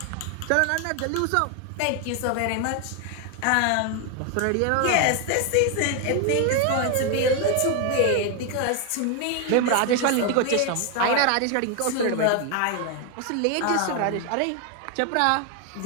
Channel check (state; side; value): different; both; correlation 0.01